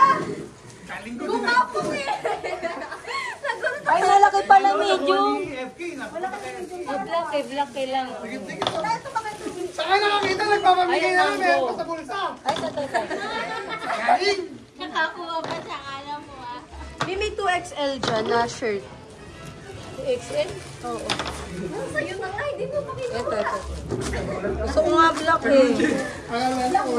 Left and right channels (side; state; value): both; identical; correlation 1.00